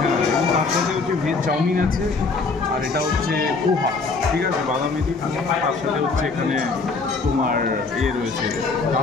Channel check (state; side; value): quieter; right; 4.2 dB